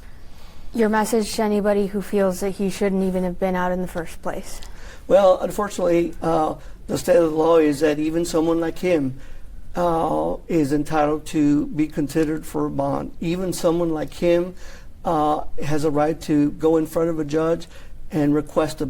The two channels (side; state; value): both; identical; correlation 1.00